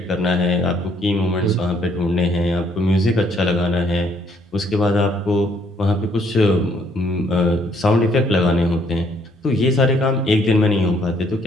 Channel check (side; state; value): both; normal; correlation 0.67